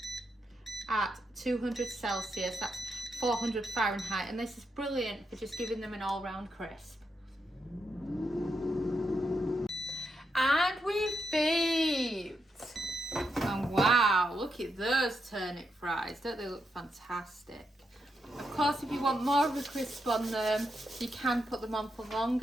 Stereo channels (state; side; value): normal; both; correlation 0.83